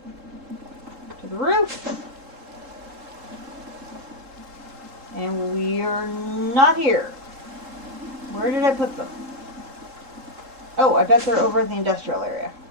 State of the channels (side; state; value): left; late; 3.7 ms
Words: To the roof. And we're not here. Where did I put them? Oh, I bet they're over in the industrial area.